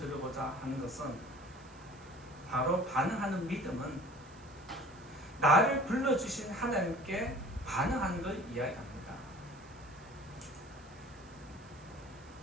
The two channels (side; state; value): right; noise; hiss, 26 dB below the sound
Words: 하는 것은 바로 반응하는 믿음은 나를 불러주신 하나님께 반응하는 걸 이야기합니다.